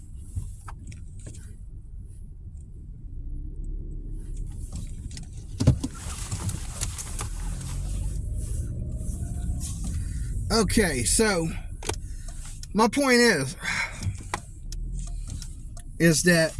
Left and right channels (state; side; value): identical; both; correlation 1.00